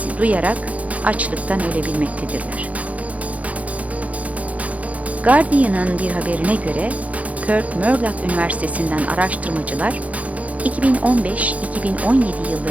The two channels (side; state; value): left; late; 0.068 ms